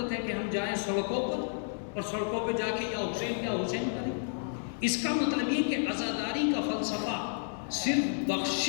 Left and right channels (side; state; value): right; silent; 57 dB below the other